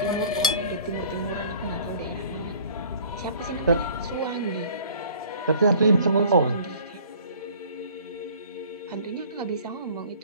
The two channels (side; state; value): both; inverted; correlation -0.51